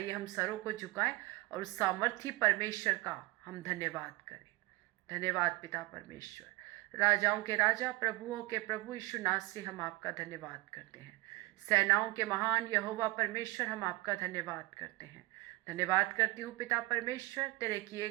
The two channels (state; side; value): quieter; left; 21.9 dB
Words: हम सरों को झुकाएं और उस सामर्थी परमेश्वर का हम धन्यवाद करें। धन्यवाद पिता परमेश्वर। राजाओं के राजा, प्रभुओं के प्रभु यीशु नासरी से हम आपका धन्यवाद करते हैं। सेनाओं के महान यहोवा परमेश्वर, हम आपका धन्यवाद करते हैं। धन्यवाद करती हूँ पिता परमेश्वर, तेरे किए